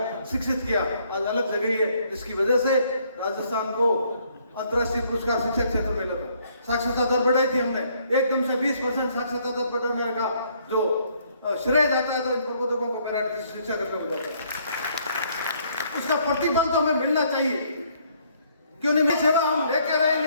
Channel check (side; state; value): both; inverted; correlation -0.67